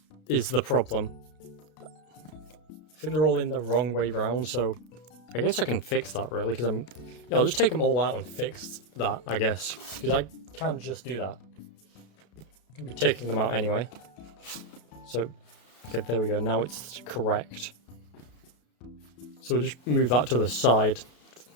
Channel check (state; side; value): late; right; 33 ms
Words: is the problem. I think they're all in the wrong way round, so I guess I can fix that really, because I'll just take them all out and fix that, I guess, because I can't just do that. I can be taking them out anyway. So, okay, there we go, now it's correct. So we'll just move that to the side.